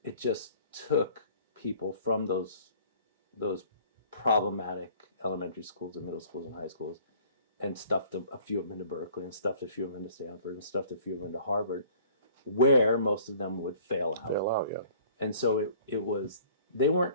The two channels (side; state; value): both; inverted; correlation -0.52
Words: It just took people from those problematic elementary schools and middle schools and high schools and stuffed a few of them into Berkeley and stuffed a few of them into Stanford and stuffed a few of them into Harvard, where most of them would fail out. And so it was, they